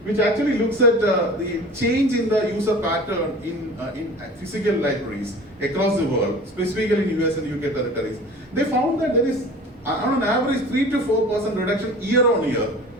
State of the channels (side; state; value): both; normal; correlation 0.41